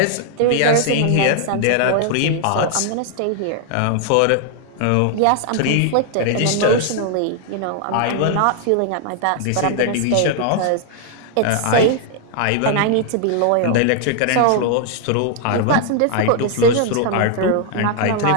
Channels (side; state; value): both; different; correlation 0.00